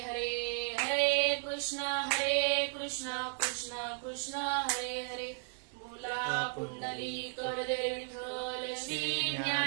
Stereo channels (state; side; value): silent; left; 55 dB below the other